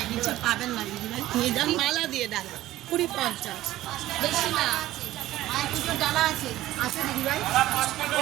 নিচে পাবেন না দিদি ভাই, নিয়ে যান মালা দিয়ে ডালা 20-50 বেশি না, মায়ের পুজোর ডালা আছে আছে দিদি ভাই।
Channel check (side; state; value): left; quieter; 15.2 dB